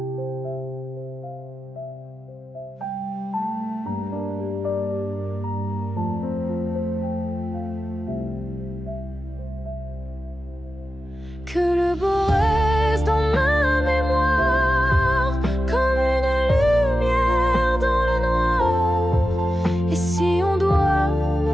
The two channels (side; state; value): both; normal; correlation 0.91